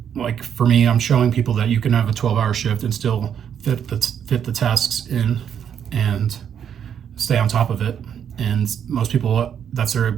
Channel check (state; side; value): quieter; left; 8.6 dB